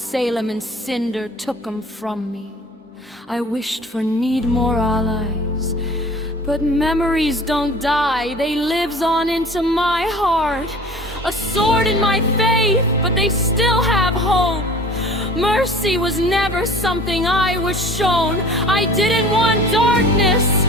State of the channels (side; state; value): both; normal; correlation 0.44